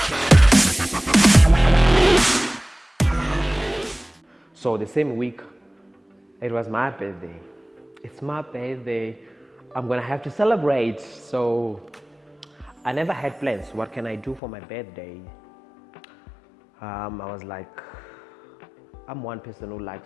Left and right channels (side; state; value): right; drops out; at 14.4 s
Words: So the same week, it was my birthday. It's my birthday. I'm gonna have to celebrate. So I never had plans. What can I do for my birthday? I was like, I'm one person who